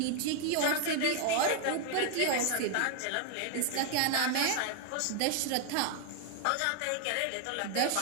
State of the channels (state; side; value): different; both; correlation 0.00